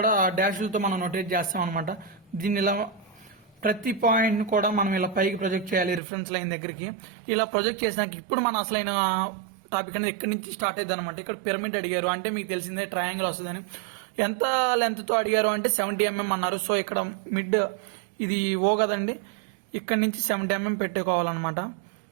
డాష్లతో మనం నోటేట్ చేస్తాం అనమాట. దీన్ని ఇలా ప్రతి పాయింట్ కూడా మనం ఇలా పైకి ప్రొజెక్ట్ చేయాలి రిఫరెన్స్ లైన్ దగ్గరికి. ఇలా ప్రొజెక్ట్ చేసినాక ఇప్పుడు మన అసలైన టాపిక్ అనేది ఎక్కడి నుంచి స్టార్ట్ అయ్యింది అనమాట. ఇక్కడ పిరమిడ్ అడిగారు అంటే మీకు తెలిసిందే ట్రయాంగిల్ వస్తుందని. ఎంత లెంత్ తో అడిగారు అంటే 70 mm అన్నారు. సో ఇక్కడ మిడ్ ఇది ఓ కదండి, ఇక్కడ నుంచి 70 mm పెట్టుకోవాలన్నమాట.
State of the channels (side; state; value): left; drops out; at 6.0 s